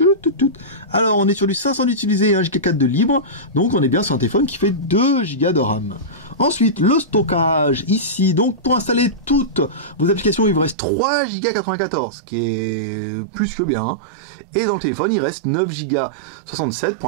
Alors, on est sur du 500 d'utilisé et 1 Go 4 de libre. Donc, on est bien sur un téléphone qui fait 2 Go de RAM. Ensuite, le stockage, ici. Donc, pour installer toutes vos applications, il vous reste 3 Go 94, qui est plus que bien. Et dans le téléphone, il reste 9 Go 67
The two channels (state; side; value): drops out; left; at 10.8 s